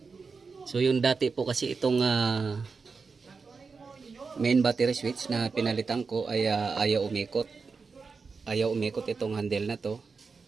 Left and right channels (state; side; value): quieter; left; 4.8 dB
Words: So yung dati po kasi itong main battery switch na pinalitan ko ay ayaw umikot. Ayaw umikot itong handle na to.